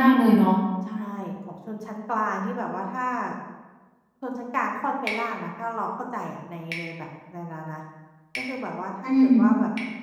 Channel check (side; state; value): both; identical; correlation 1.00